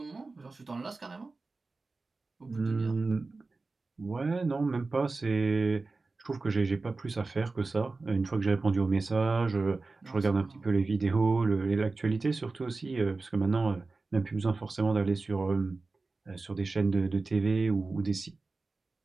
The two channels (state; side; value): quieter; left; 3.7 dB